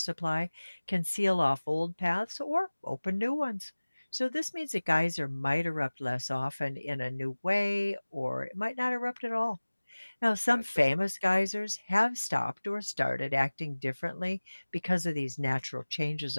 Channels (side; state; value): both; inverted; correlation -1.00